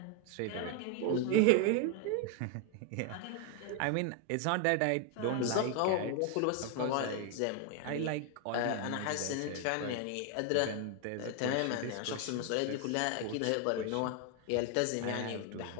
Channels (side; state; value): both; different; correlation 0.01